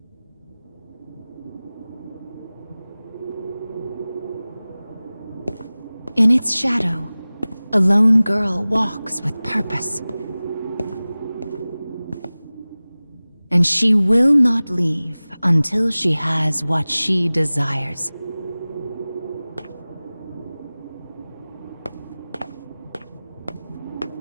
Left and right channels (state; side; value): inverted; both; correlation -0.98